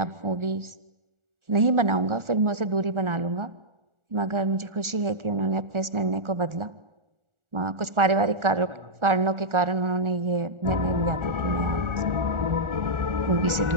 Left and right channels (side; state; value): left; late; 1.4 ms